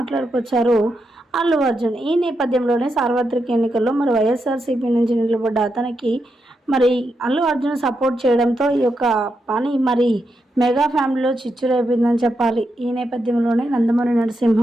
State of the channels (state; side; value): normal; both; correlation 0.84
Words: అల్లు అర్జున్. ఈ నేపథ్యంలోనే సార్వత్రిక ఎన్నికల్లో మరి వైఎస్ఆర్సీపీ నుంచి నిలబడ్డ అతనికి మరి అల్లు అర్జున్ సపోర్ట్ చేయడంతో ఈ యొక్క పని మరి మెగా ఫ్యామిలీలో చిచ్చురేపిందని చెప్పాలి. ఈ నేపథ్యంలోనే నందమూరి